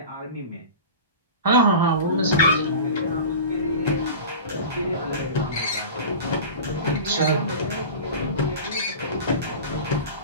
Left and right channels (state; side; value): inverted; both; correlation -0.34